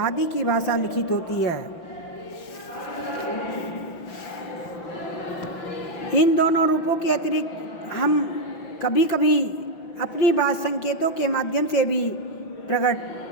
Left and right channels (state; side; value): late; right; 5.9 ms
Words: की भाषा लिखित होती है। इन दोनों रूपों के अतिरिक्त हम कभी कभी अपनी बात संकेतों के माध्यम से भी प्रकट